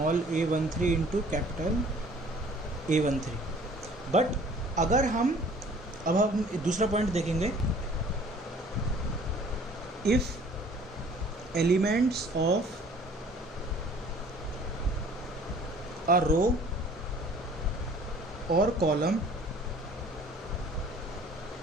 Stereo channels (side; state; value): both; normal; correlation 0.52